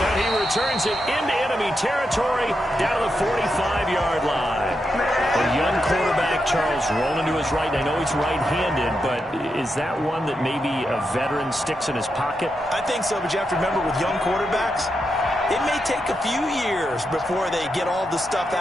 he returns it into enemy territory down to the 45-yard line. A young quarterback, Charles, rolling to his right. I know he's right-handed, but is that one that maybe a veteran sticks in his pocket? I think so, but you have to remember with young quarterbacks, it may take a few years before they get all the stuff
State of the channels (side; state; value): both; normal; correlation 0.85